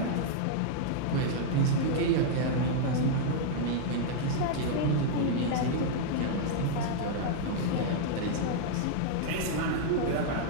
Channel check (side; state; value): both; different; correlation -0.01